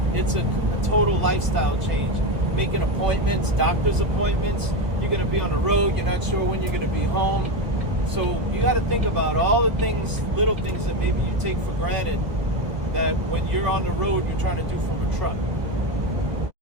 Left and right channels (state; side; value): late; left; 1.2 ms